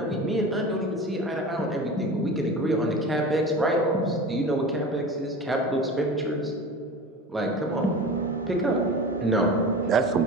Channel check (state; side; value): normal; both; correlation 0.33